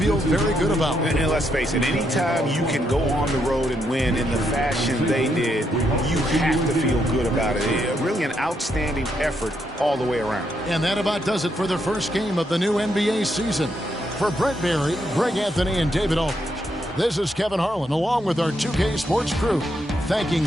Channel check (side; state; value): both; normal; correlation 0.78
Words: very good about. And let's face it, anytime you can go on the road and win in the fashion they did, you have to feel good about it. Really an outstanding effort all the way around. And that about does it for the first game of the new NBA season. For Brent Barry, Greg Anthony, and David Aldridge, this is Kevin Harlan, along with our 2K Sports crew, thanking